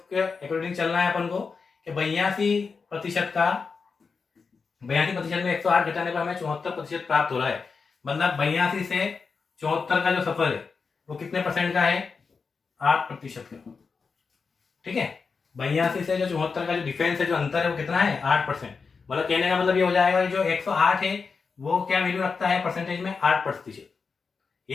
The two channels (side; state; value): right; quieter; 5.0 dB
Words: अकॉर्डिंग चलना है अपन को कि 82% में 108 घटाने पर हमें 74% प्राप्त हो रहा है। मतलब 82 से 74 का जो सफर है वो कितने परसेंट का है, 8% का। ठीक है, 82 से जो 74 का जो डिफरेंस है, जो अंतर है वो कितना है, 8%। मतलब कहने का मतलब ये हो जाएगा जो 108 है वो क्या वैल्यू रखता है परसेंटेज में, 8%।